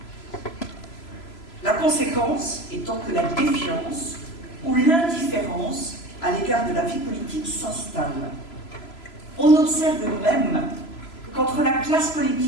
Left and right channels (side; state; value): right; late; 3.0 ms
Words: La conséquence étant que la défiance ou l'indifférence à l'égard de la vie politique s'installe. On observe même qu'entre la classe